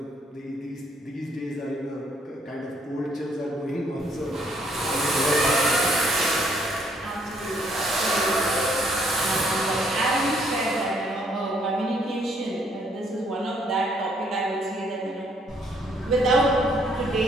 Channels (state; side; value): normal; both; correlation 0.67